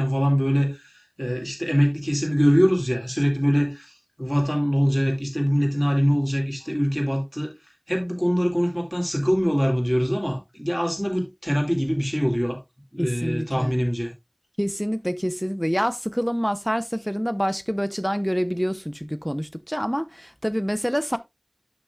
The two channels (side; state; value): both; identical; correlation 1.00